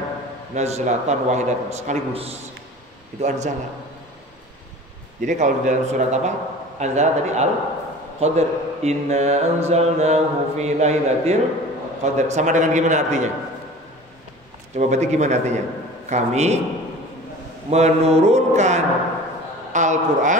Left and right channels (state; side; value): normal; both; correlation 0.40